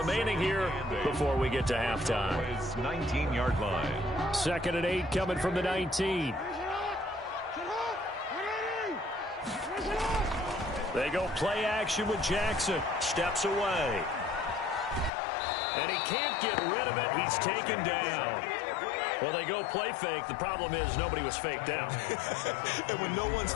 here before we get to halftime. 19-yard line. 2nd and 8 coming from the 19. They go play action with Jackson. Steps away. And he can't get rid of it. He's taken down. Well, they go play fake. The problem is nobody was faked out. And when no one's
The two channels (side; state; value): right; drops out; at 15.1 s